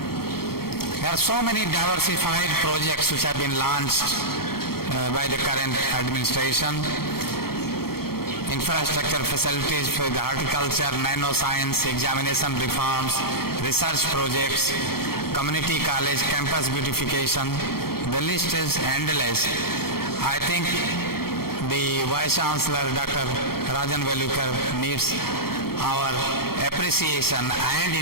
There are so many diversified projects which have been launched by the current administration. Infrastructure facilities for the horticulture, nanoscience, examination reforms, research projects, community college, campus beautification. The list is endless. I think the Vice Chancellor, Dr. Rajan Velukar, needs our appreciation and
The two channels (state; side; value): late; right; 0.94 ms